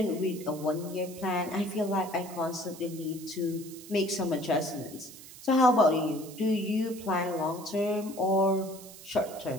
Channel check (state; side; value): noise; right; hiss, 17 dB below the sound